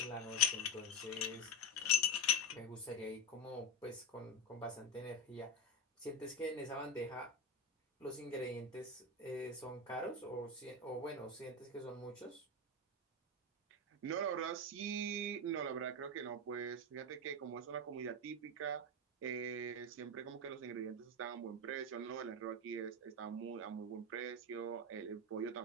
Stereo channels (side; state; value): both; normal; correlation 0.14